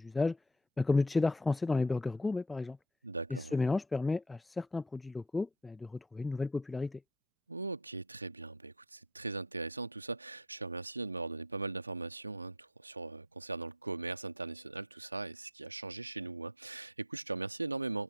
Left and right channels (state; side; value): normal; both; correlation 0.46